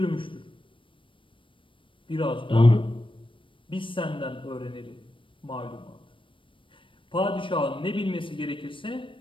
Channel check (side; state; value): right; late; 0.25 ms